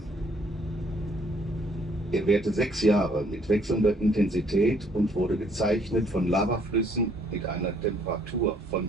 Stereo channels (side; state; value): both; normal; correlation 0.64